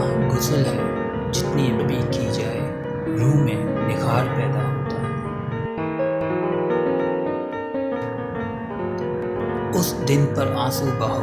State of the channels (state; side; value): identical; both; correlation 1.00